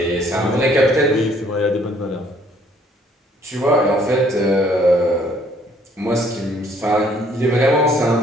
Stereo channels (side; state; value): both; normal; correlation 0.62